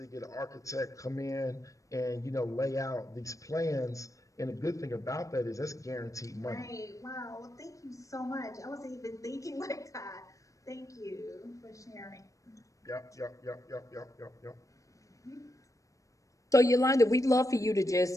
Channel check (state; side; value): late; right; 0.16 ms